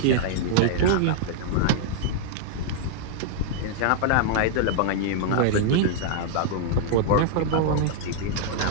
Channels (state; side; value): different; both; correlation -0.01